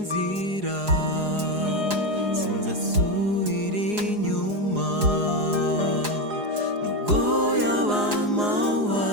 sinzasubira inyuma, nubwo yaba amahwa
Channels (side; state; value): left; late; 4.8 ms